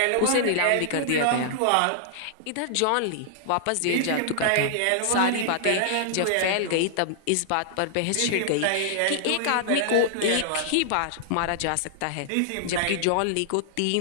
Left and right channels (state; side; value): different; both; correlation -0.01